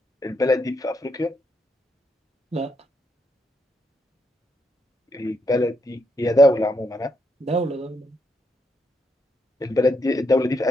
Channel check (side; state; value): both; normal; correlation 0.79